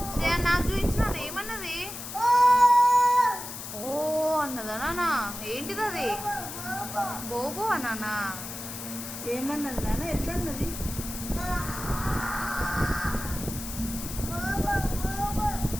శ్రేయ, నాకు చూపించు నాన్న. ఏమన్నది? ఓ అన్నదా నాన్న? ఏంటిది అది? బోబో అన్నానా? ఏమన్నది నాన్న? ఎట్లా అన్నది?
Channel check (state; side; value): noise; left; hiss, 9 dB below the sound